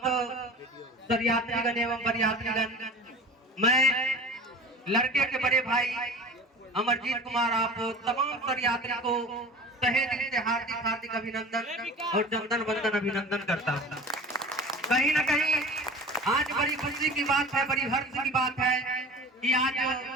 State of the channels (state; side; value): normal; both; correlation 0.38